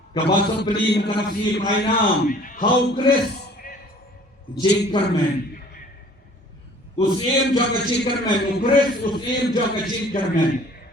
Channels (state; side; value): normal; both; correlation 0.52